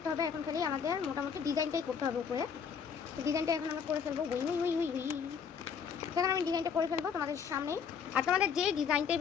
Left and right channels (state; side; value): quieter; right; 6.8 dB